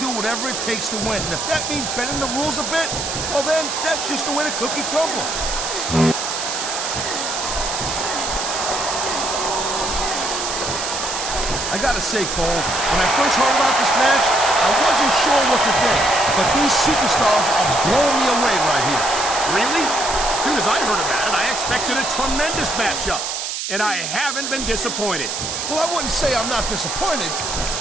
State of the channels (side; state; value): right; noise; hiss, 4 dB below the sound